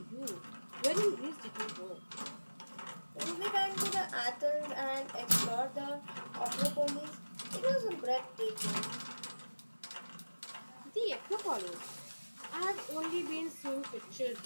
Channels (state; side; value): inverted; both; correlation -1.00